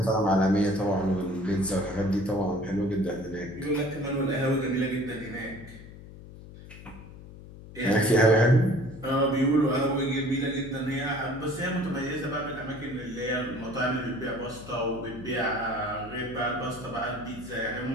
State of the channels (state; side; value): noise; left; hum, 16 dB below the sound